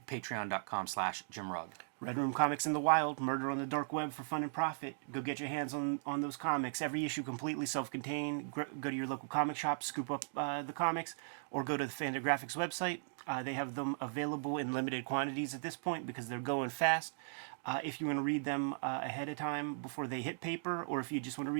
patreon.com/JimRugg. Red Room Comics in the Wild, Murder on the Dark Web for fun and profit. Go get your hands on those comics. Every issue completely self-contained. Go to your local comic shop, scoop up the comics, or go to the Fantagraphics website. They have them available in limited quantities at this point because they're going fast. If you want to read them ahead of time before they hit paper, or if you just want to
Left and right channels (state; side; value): silent; left; digital silence